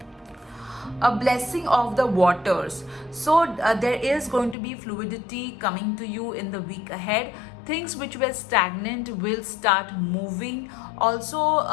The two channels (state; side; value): drops out; right; at 4.5 s